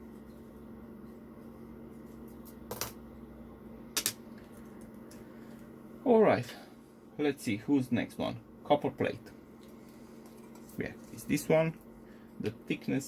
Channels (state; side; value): identical; both; correlation 1.00